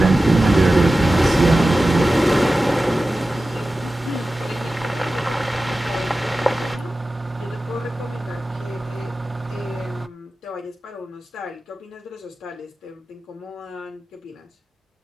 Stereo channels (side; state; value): both; normal; correlation 0.95